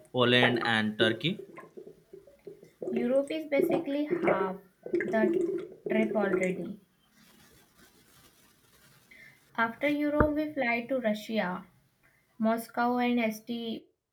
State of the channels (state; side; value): identical; both; correlation 1.00